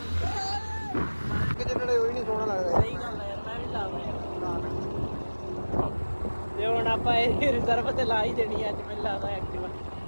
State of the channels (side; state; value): both; inverted; correlation -1.00